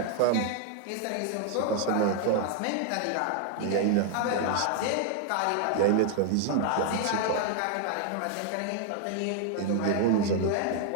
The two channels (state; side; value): different; both; correlation 0.00